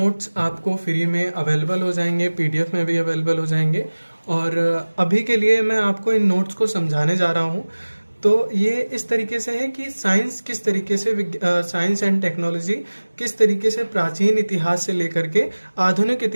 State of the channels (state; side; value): inverted; both; correlation -1.00